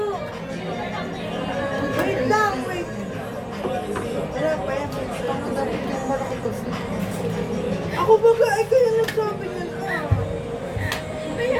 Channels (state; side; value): identical; both; correlation 1.00